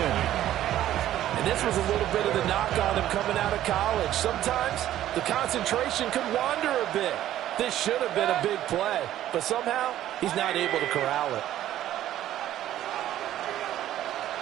This was a little bit of the knock on him coming out of college. Sometimes the concentration could wander a bit. This should have been a big play, but somehow he's not able to corral it.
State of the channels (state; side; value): quieter; left; 12.7 dB